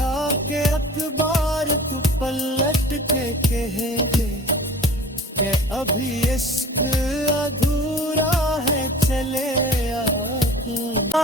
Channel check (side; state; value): both; normal; correlation 0.43